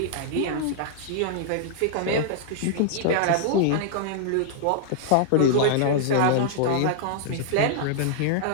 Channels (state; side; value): different; both; correlation -0.01